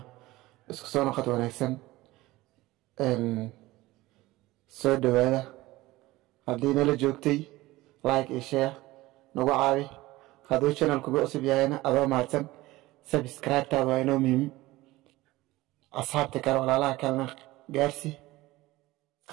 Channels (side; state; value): left; quieter; 18.7 dB